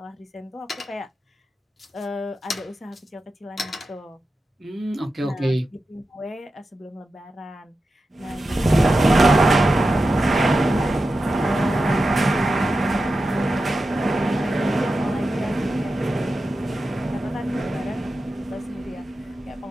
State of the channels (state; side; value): normal; both; correlation 0.92